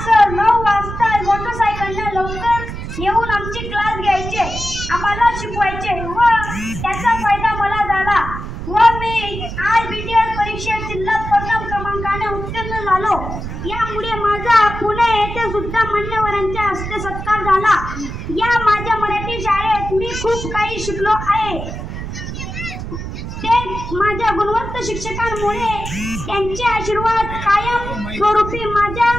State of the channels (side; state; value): right; noise; rumble, 7 dB below the sound